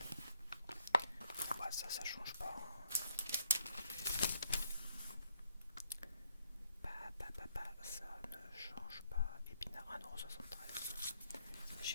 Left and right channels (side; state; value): both; inverted; correlation -0.72